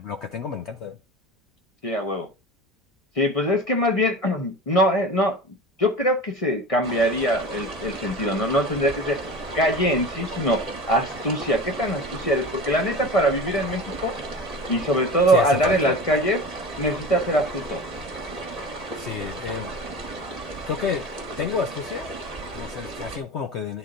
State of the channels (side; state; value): both; normal; correlation 0.33